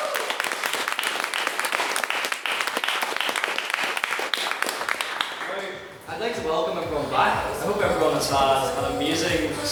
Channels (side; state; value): both; identical; correlation 1.00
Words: I'd like to welcome everyone back. I hope everyone has had an amazing